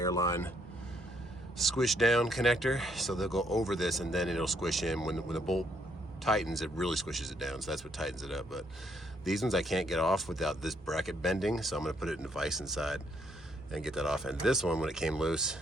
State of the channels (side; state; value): both; normal; correlation 0.72